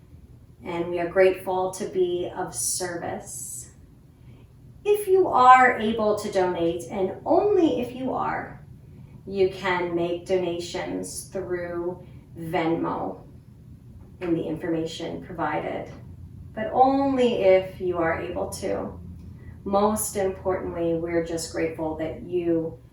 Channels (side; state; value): both; identical; correlation 1.00